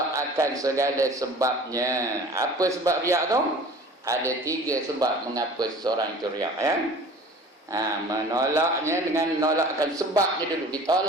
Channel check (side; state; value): both; normal; correlation 0.44